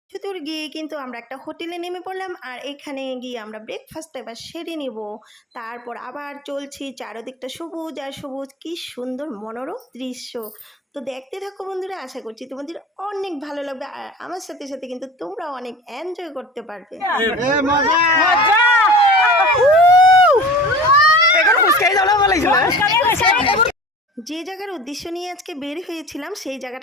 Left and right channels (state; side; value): normal; both; correlation 0.38